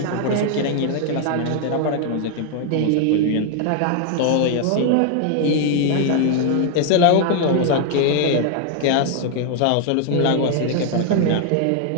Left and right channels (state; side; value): different; both; correlation 0.00